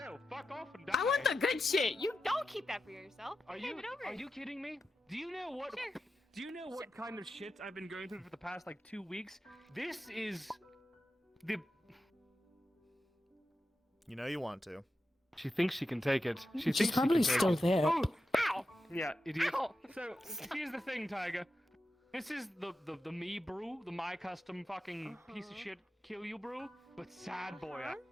fuck off and die. I want the good shit. You don't keep that for yourself. Are Hand you it over. are you kidding me? Do you know what? Sure. Do you know what kind of shit I've been going through for the past like 2 weeks? This is You know you want to. She thinks she can take it. She She's thinks probably she can still take it. there. Oh, ow! Yeah, idiot. So here's the thing, Tiger. This is the me brew, the my custom fucking piece of shit kill you brew, but sad boy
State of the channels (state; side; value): normal; both; correlation 0.90